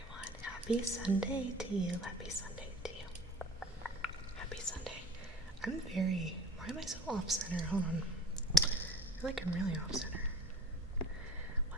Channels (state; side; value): normal; both; correlation 0.42